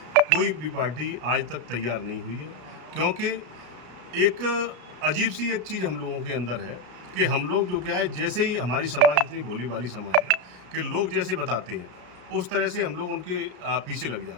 कोई भी पार्टी आज तक तैयार नहीं हुई है। क्योंकि एक अजीब सी एक चीज़ हम लोगों के अंदर है कि हम लोग जो क्या है, जैसे ही हमारी समाज इतनी भोली भाली समाज है कि लोग जैसे बताते हैं उस तरह से हम लोग उनके पीछे लग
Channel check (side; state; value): left; late; 33 ms